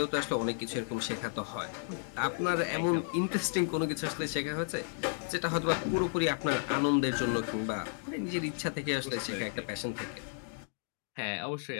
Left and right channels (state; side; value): silent; right; digital silence